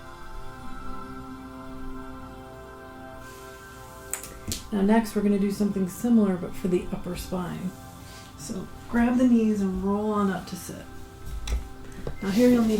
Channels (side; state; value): both; identical; correlation 1.00